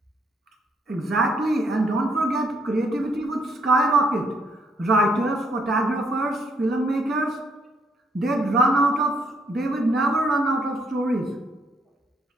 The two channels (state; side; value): normal; both; correlation 0.71